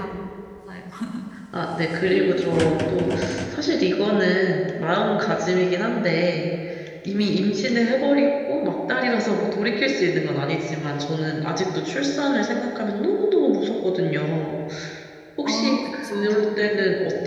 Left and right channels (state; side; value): identical; both; correlation 1.00